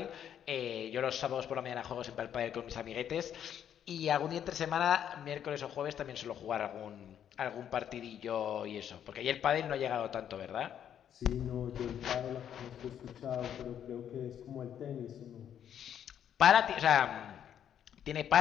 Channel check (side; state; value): right; quieter; 9.5 dB